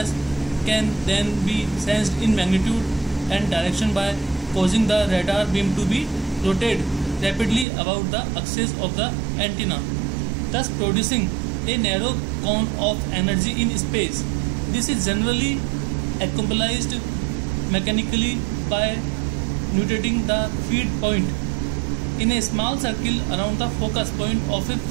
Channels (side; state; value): left; drops out; at 7.7 s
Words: can then be sensed in magnitude and direction by causing the radar beam to be rotated rapidly about the axis of the antenna, thus producing a narrow cone of energy in space. This is generally accomplished mechanically by rotating the feed point in a small circle around the focus point of a